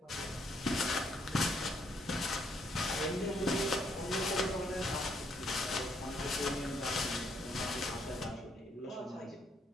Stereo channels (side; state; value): both; normal; correlation 0.71